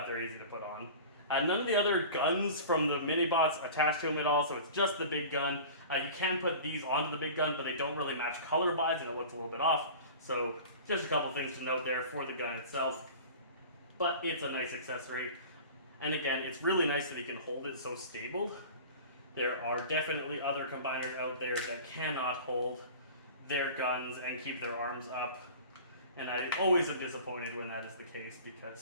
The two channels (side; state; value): both; inverted; correlation -0.38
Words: they're easy to put on. None of the other guns from the mini-bots attach to him at all, so it's just the big gun. You can put these onto the big gun, but they don't really match color-wise, and it looks a little bit off. So just a couple things to note there for the gun itself. But it's a nice accessory. And again, it's really nice that he can hold it so stable. There are definitely other combiners out there that cannot hold their guns and keep their arms up. And I always am disappointed when that is the case